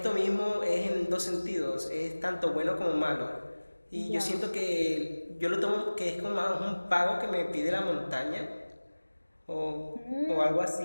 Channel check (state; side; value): inverted; both; correlation -1.00